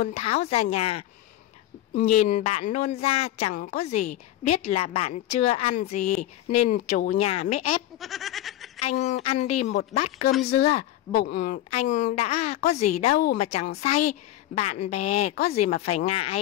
tháo ra nhà. Nhìn bạn nôn ra chẳng có gì, biết là bạn chưa ăn gì nên chủ nhà mới ép. Anh ăn đi một bát cơm dưa, bụng anh đã có gì đâu mà chẳng say, bạn bè có gì mà phải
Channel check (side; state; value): right; quieter; 13.9 dB